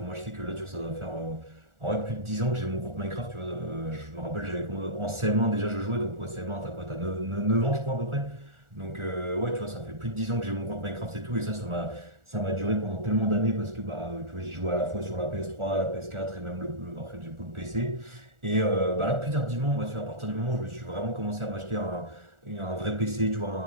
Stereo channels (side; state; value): left; late; 1.4 ms